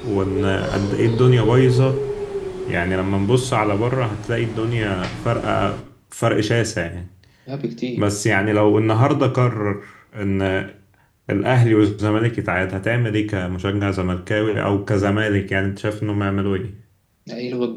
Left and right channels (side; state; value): both; identical; correlation 1.00